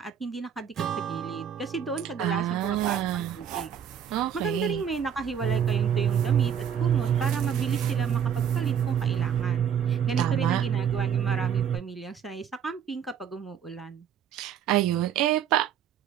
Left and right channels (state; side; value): quieter; left; 8.4 dB